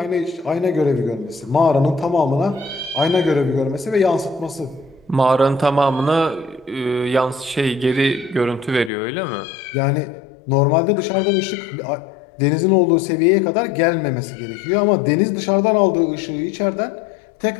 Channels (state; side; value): drops out; right; at 8.9 s